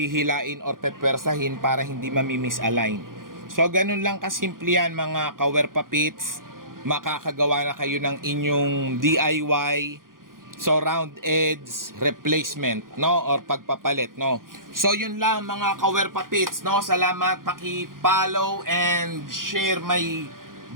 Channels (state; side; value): late; left; 0.90 ms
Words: or pepwersahin para hindi mamimisalign. So ganun lang kasimple yan mga kawerpa pits. Makakagawa na kayo ng inyong DIY so round edge replacement, no, or pagpapalit, no. So yun lang mga kawerpa pits, no. Salamat, paki-follow and share my